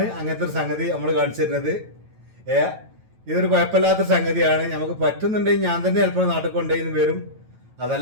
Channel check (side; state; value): left; late; 9.1 ms